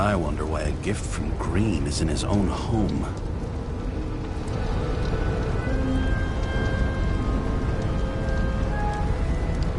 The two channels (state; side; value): identical; both; correlation 1.00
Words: wonder why a gift from Green is in his own home.